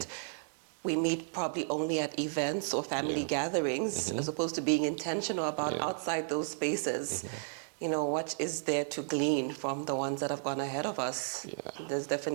we meet probably only at events or family gatherings as opposed to being intentional about outside those spaces. You know, what is there to glean from the ones that have gone ahead of us? There's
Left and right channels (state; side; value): silent; left; digital silence